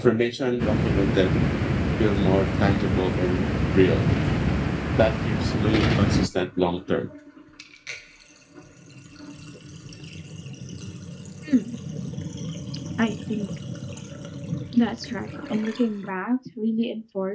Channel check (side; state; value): both; identical; correlation 1.00